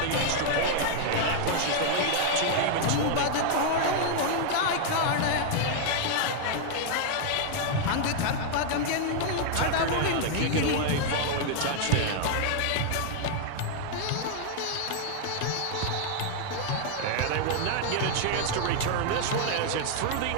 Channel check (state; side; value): different; both; correlation 0.00